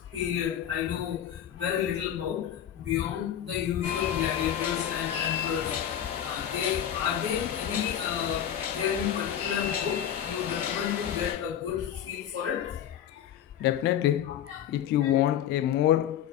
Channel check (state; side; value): quieter; right; 10.1 dB